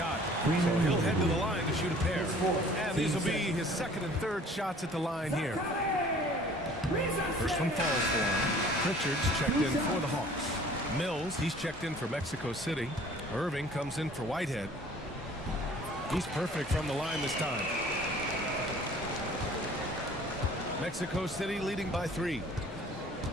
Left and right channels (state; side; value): normal; both; correlation 0.51